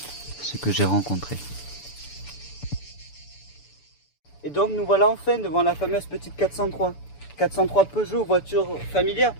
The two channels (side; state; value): right; late; 6.9 ms